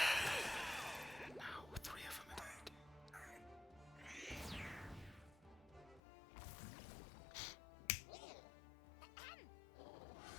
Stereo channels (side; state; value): right; drops out; at 6.0 s